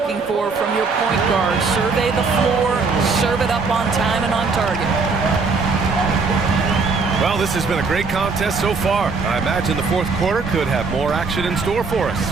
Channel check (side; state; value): left; quieter; 4.5 dB